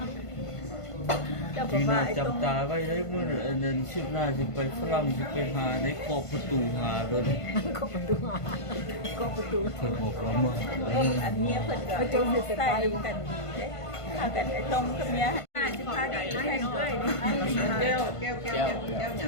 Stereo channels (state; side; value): late; right; 1.5 ms